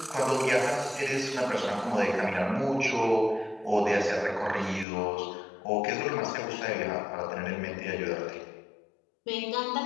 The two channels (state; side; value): drops out; right; at 4.9 s